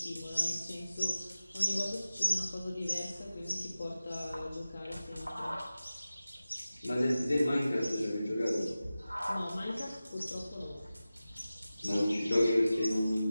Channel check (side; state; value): both; inverted; correlation -0.95